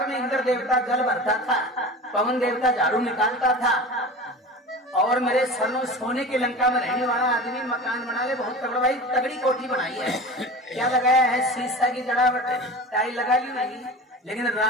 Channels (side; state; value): both; normal; correlation 0.34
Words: में इंद्र देवता जल भरता था, पवन देवता झाड़ू निकालता था। और मेरे सरनो सोने की लंका में रहने वाला आदमी मकान बना ले, बहुत तगड़ा भाई, तगड़ी कोठी बनाई है। क्या लगाया है? शीशा की जड़ावट, टाइल लगा ली नहीं। लेकिन